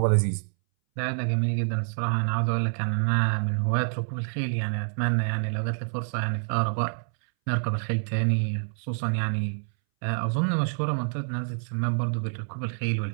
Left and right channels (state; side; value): silent; left; 60 dB below the other